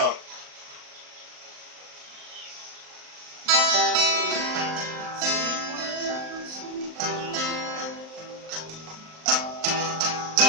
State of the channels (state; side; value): late; left; 38 ms